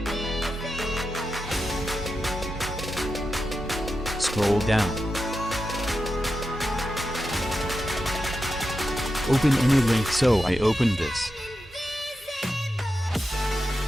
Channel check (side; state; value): both; normal; correlation 0.89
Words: Scroll down. Open any link, so I opened this.